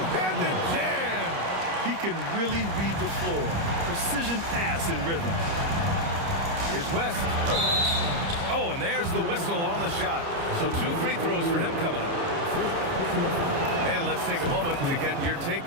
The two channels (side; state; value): left; late; 30 ms